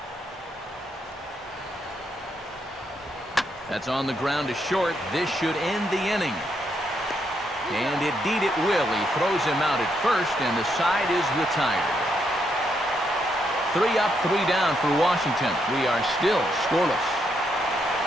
That's on the ground to short. This should end the inning. And indeed it will. He throws him out at first, and the side is retired. 3 up, 3 down for Washington. We are still scoreless.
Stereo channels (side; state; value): both; normal; correlation 0.78